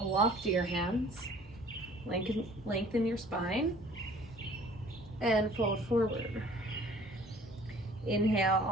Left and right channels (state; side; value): normal; both; correlation 0.52